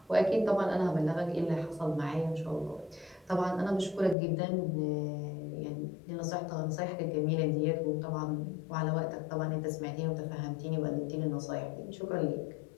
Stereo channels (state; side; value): drops out; right; at 4.2 s